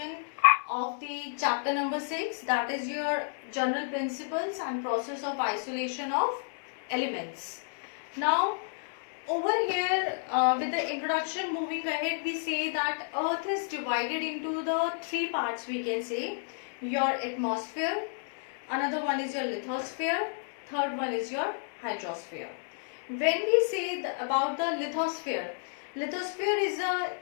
of the chapter number 6, that is your general principles and process of isolation of elements. Now over here with the introduction, moving ahead, we say that earth is divided into the three parts, we can say. Your atmosphere, another one is your lithosphere, third one is your hydrosphere. When we say about the lithosphere, lithosphere is a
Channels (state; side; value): silent; right; digital silence